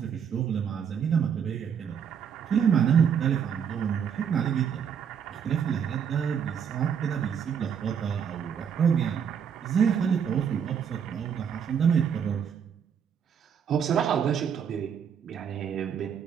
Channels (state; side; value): quieter; left; 7.7 dB